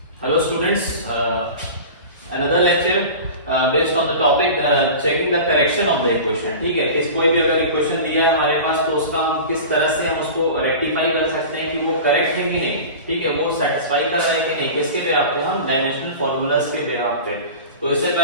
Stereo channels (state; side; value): inverted; both; correlation -0.34